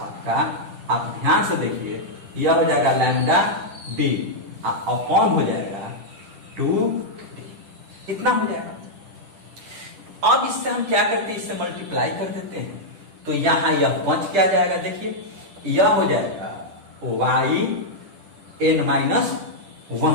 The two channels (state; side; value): late; left; 10 ms